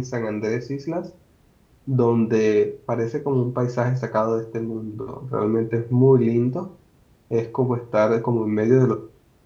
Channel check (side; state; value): both; identical; correlation 1.00